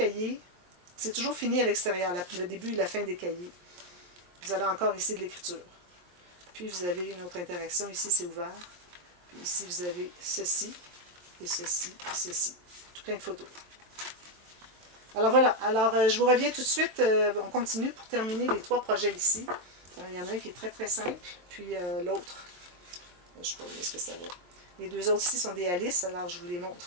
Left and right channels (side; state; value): left; late; 23 ms